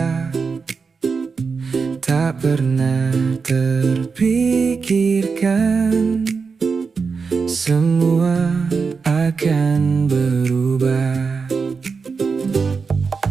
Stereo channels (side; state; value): left; quieter; 5.1 dB